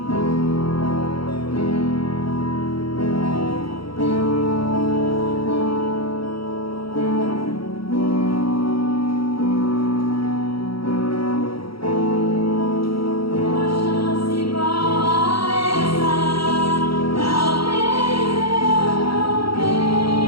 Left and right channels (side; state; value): right; late; 0.75 ms